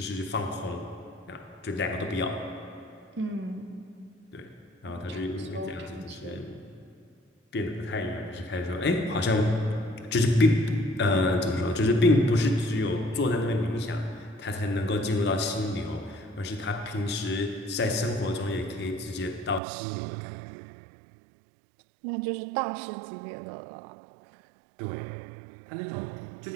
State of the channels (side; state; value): left; drops out; at 19.6 s